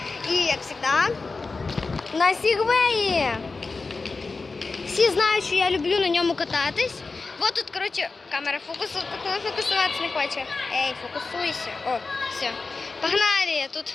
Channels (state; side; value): quieter; right; 4.0 dB